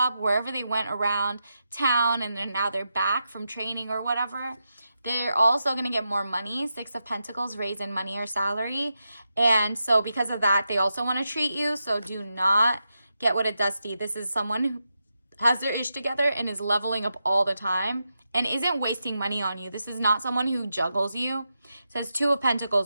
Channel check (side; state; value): both; inverted; correlation -0.87